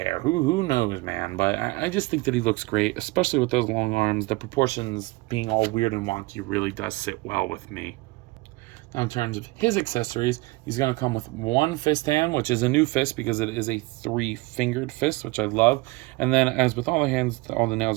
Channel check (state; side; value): quieter; left; 23.2 dB